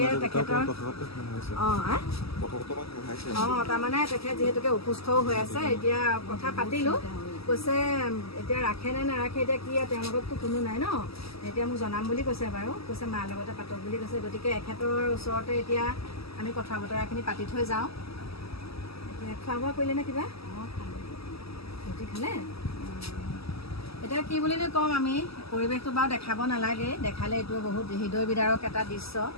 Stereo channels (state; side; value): late; right; 0.76 ms